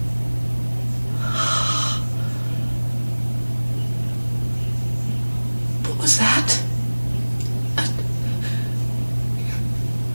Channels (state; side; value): inverted; both; correlation -1.00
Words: What was that?